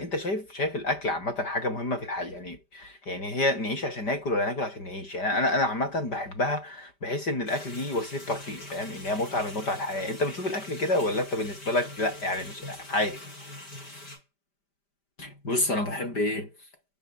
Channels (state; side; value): late; right; 5.1 ms